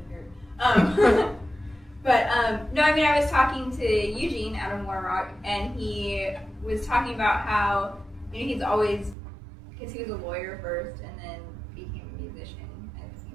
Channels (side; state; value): left; drops out; at 9.2 s